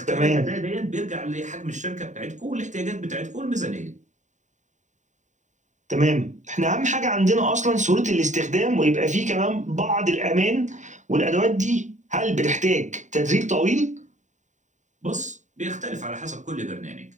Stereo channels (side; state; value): left; late; 0.35 ms